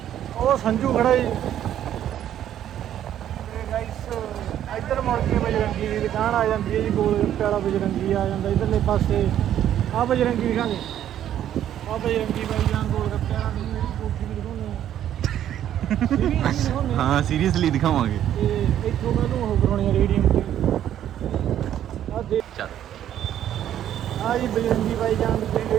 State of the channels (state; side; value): quieter; left; 11.0 dB